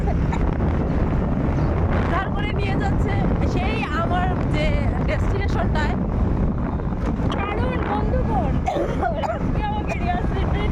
নিয়ে যাচ্ছে সেই আমার যে ডেস্টিনেশনটায়।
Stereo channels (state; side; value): identical; both; correlation 1.00